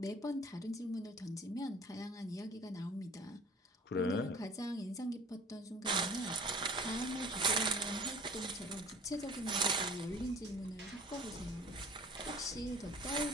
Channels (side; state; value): both; normal; correlation 0.46